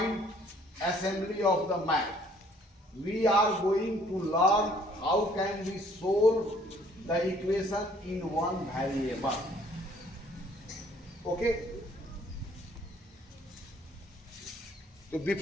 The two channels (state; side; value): normal; both; correlation 0.60